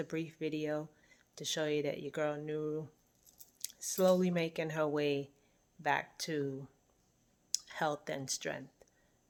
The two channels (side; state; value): both; identical; correlation 1.00